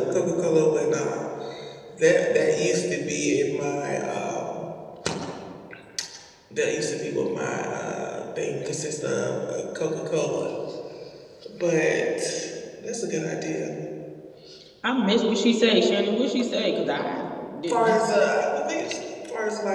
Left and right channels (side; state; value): both; identical; correlation 1.00